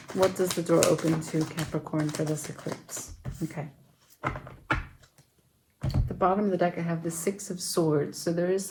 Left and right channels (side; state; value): both; identical; correlation 1.00